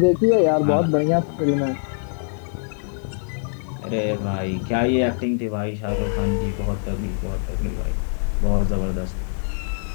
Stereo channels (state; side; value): silent; right; 63 dB below the other